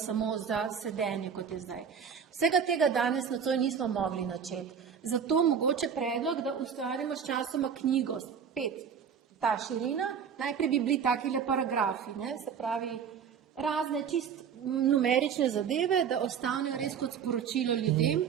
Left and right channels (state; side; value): quieter; left; 7.3 dB